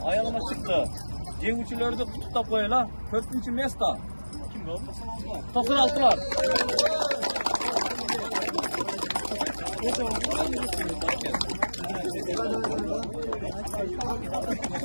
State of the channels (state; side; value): inverted; both; correlation -1.00